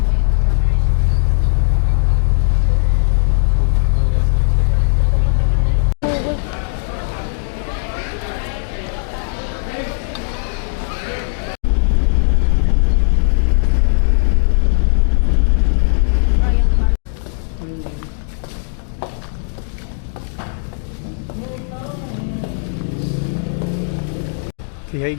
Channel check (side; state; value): right; silent; digital silence